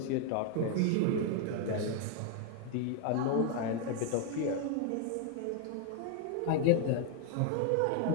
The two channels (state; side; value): different; both; correlation 0.00